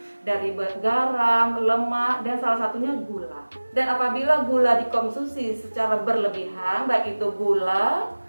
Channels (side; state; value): both; inverted; correlation -1.00